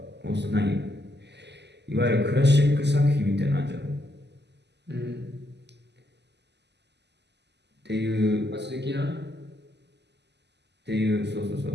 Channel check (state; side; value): late; left; 0.50 ms